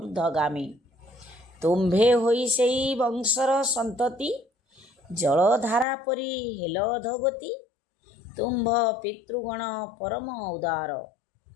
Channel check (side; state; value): right; drops out; at 5.9 s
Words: तुम्भे होई सेई वंशर संतति, जलधारा परी हेल अधगति। तुम्भ पितृगण परम उदार,